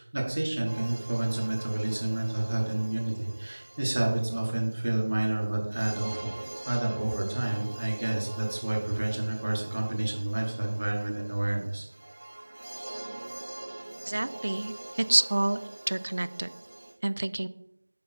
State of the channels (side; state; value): both; inverted; correlation -1.00